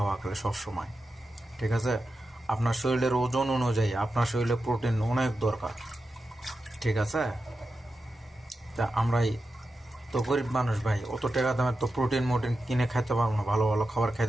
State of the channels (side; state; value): both; normal; correlation 0.90